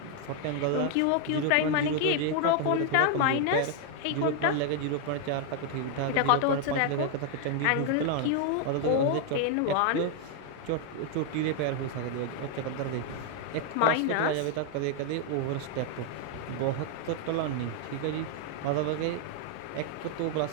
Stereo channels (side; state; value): both; different; correlation 0.00